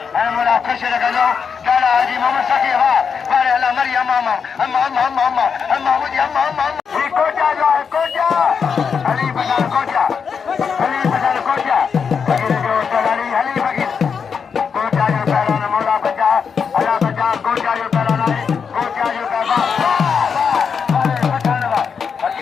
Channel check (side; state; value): right; quieter; 6.3 dB